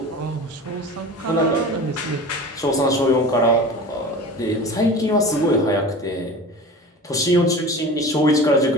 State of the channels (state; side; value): normal; both; correlation 0.35